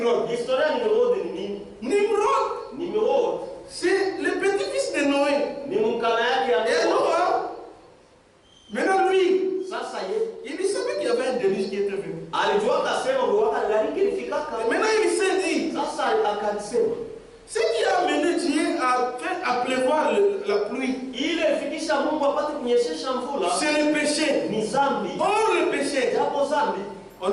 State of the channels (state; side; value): identical; both; correlation 1.00